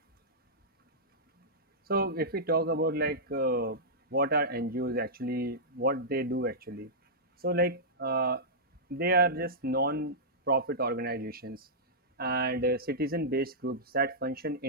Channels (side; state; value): both; normal; correlation -0.13